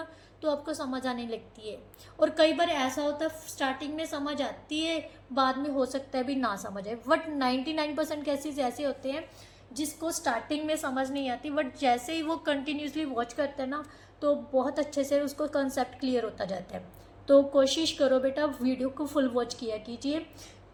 तो आपको समझ आने लगती है। और कई बार ऐसा होता है स्टार्टिंग में समझ आती है, बाद में हो सकता है भी ना समझ आए। बट 99% केसेस ऐसे होते हैं जिसको स्टार्टिंग में समझ नहीं आती, बट जैसे ही वो कंटिन्यूसली वॉच करते हैं ना तो बहुत अच्छे से उसको कंसेप्ट क्लियर होता जाता है। तो कोशिश करो बेटा वीडियो को फुल वॉच किया कीजिए,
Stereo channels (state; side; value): identical; both; correlation 1.00